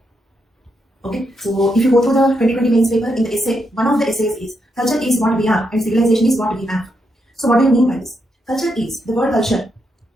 Okay, so if you go through the 2020 mains paper, in the essay, one of the essays is culture is what we are and civilization is what we have. So what do you mean by this? Culture is, the word culture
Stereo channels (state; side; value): normal; both; correlation 0.81